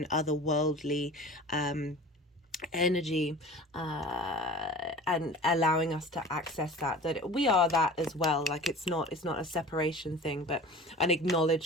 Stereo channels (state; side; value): normal; both; correlation 0.39